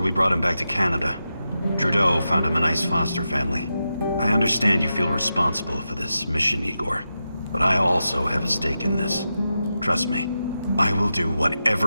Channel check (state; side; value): inverted; both; correlation -0.89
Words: brought him back to Canada. Trudeau found him a nice foster family. I understand you feel responsible for this mission, Igor. But I also have a stake in this. Trust me, I will do